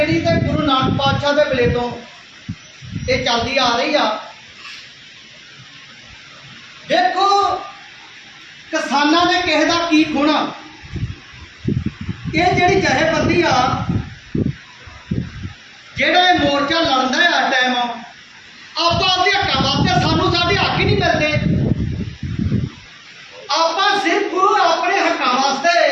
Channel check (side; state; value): both; identical; correlation 1.00